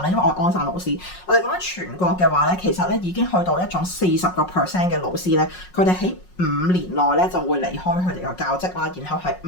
咧，因為我係安省老師。我哋講緊全國嘅話咧，其實咧已經去到一種40% 嘅老師咧，佢哋喺5年內咧就會離開佢哋個教職啦，然後係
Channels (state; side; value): late; right; 5.5 ms